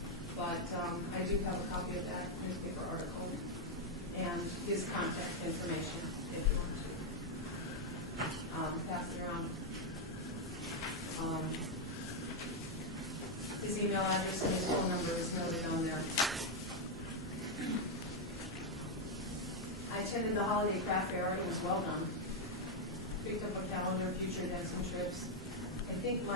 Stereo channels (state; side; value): normal; both; correlation 0.01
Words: But I do have a copy of that newspaper article and his contact information if you want to. Pass it around. His email address and his phone number is noted on there. I attended the holiday craft fair. It was well done. Picked up a calendar, future events and trips. I think